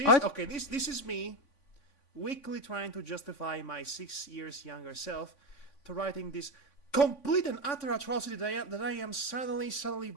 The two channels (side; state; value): right; late; 3.5 ms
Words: this is me weakly trying to justify my 6 years younger self to writing this complete and utter atrocity that I am suddenly